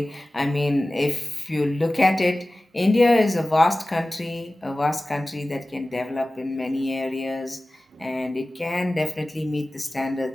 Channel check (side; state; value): both; normal; correlation 0.97